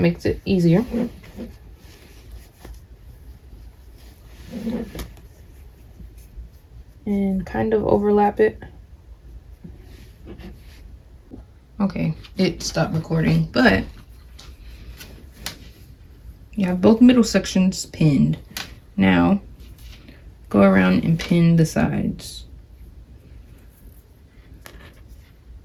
it easier. And kind of overlap it. Okay, it stopped recording, but you have both middle sections pinned. Now, go around and pin the sides.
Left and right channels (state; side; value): identical; both; correlation 1.00